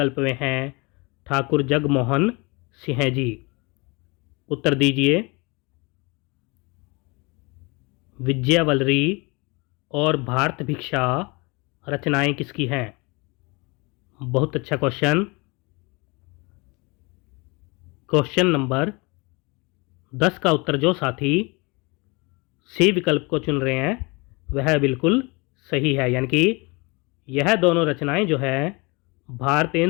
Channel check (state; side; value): quieter; right; 27.5 dB